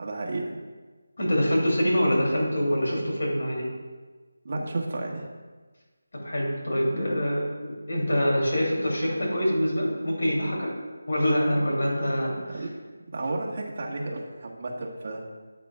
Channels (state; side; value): inverted; both; correlation -0.95